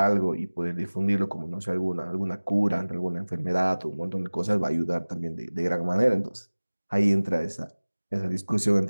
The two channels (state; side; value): inverted; both; correlation -1.00